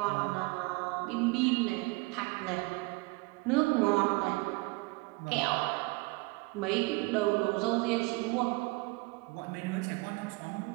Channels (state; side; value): quieter; left; 24.6 dB